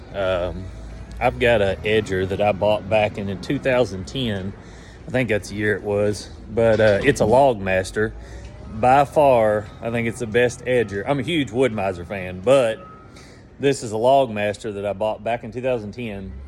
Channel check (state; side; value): identical; both; correlation 1.00